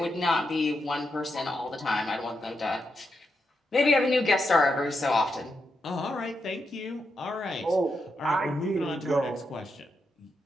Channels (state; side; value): normal; both; correlation 0.84